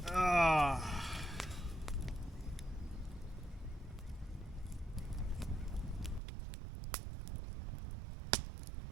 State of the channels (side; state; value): left; drops out; at 6.2 s